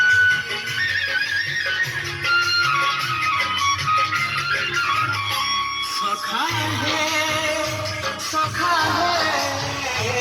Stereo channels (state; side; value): identical; both; correlation 1.00